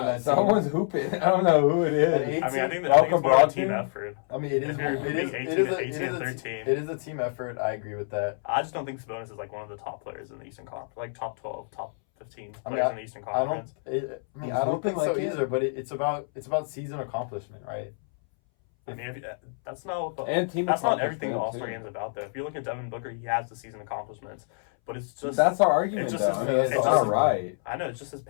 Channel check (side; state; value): right; silent; 60 dB below the other